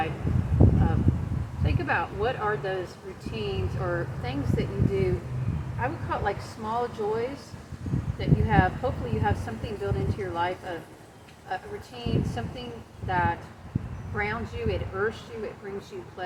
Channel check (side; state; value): both; identical; correlation 1.00